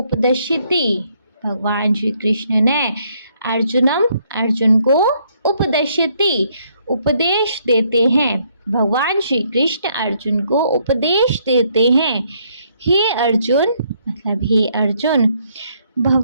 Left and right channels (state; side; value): inverted; both; correlation -0.70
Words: भगवान श्री कृष्ण ने अर्जुन को उपदिशति उपदेश देते हैं। भगवान श्री कृष्ण अर्जुन को उपदेश देते हैं। हे अर्जुन मतलब हे अर्जुन,